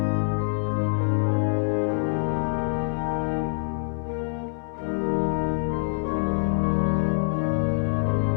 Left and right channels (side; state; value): right; silent; 61 dB below the other